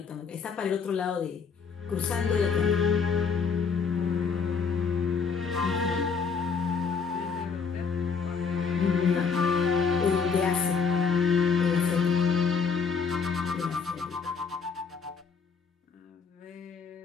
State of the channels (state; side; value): quieter; right; 5.6 dB